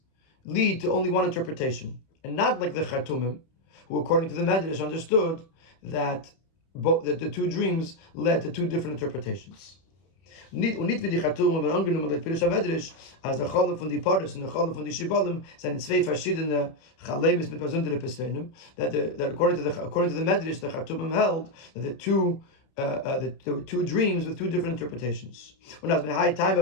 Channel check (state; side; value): late; right; 31 ms